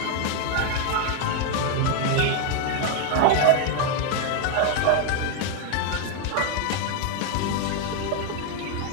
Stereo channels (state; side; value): different; both; correlation 0.01